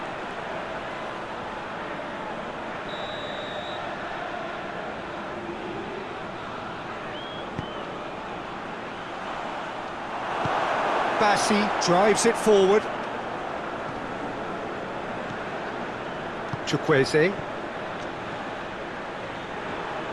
Bassi drives it forward. Chukwueze.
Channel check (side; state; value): both; identical; correlation 1.00